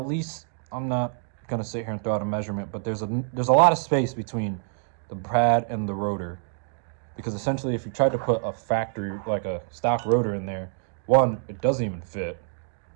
least, I'm not gonna sit here and throw out a measurement, but there's a lot of space between the pad and the rotor, because essentially if you tried to put a factory, like a stock rotor in there, one, it doesn't even fit.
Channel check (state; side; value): silent; left; digital silence